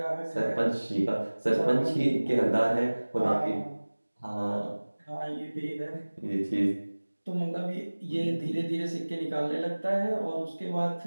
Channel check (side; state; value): both; inverted; correlation -1.00